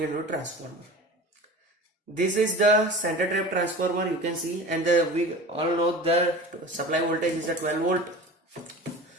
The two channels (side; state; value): both; normal; correlation 0.36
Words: a transformer. This is the center trap transformer, you can see, and we all know the supply voltage is a 12 volt.